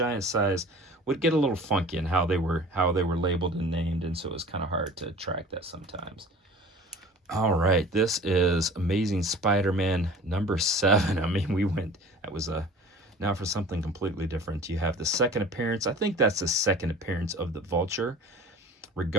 size would get a little funky in how they were labeled and named, and so it was kind of hard to track that sometimes. All right, this is Amazing Spider-Man number 7. I mean, now for something completely different. You have the second appearance. I think that's the second appearance of the Vulture.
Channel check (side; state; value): both; normal; correlation 0.43